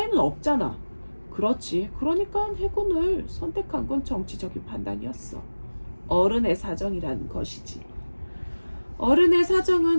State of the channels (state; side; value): inverted; both; correlation -1.00